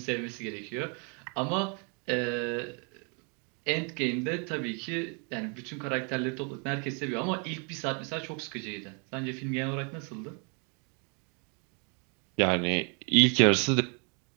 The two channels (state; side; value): quieter; left; 36.4 dB